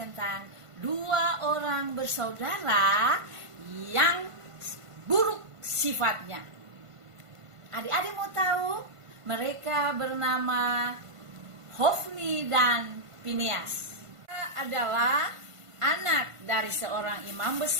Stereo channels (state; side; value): late; left; 1.5 ms